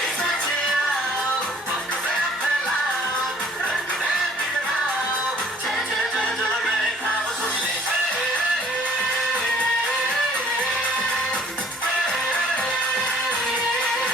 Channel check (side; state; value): both; normal; correlation 0.56